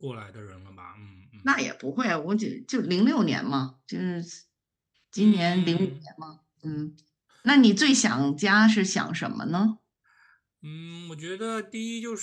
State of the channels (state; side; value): identical; both; correlation 1.00